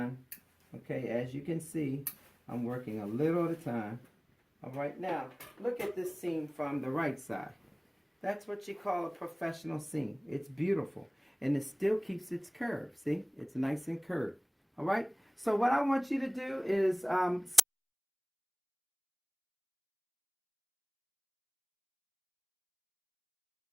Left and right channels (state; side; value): identical; both; correlation 1.00